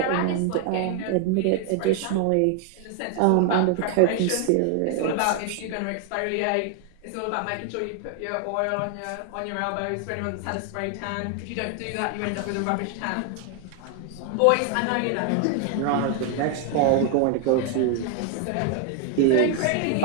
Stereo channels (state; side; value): different; both; correlation 0.00